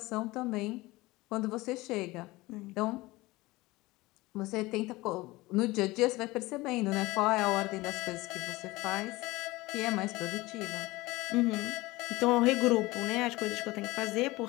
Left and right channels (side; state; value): right; quieter; 20.5 dB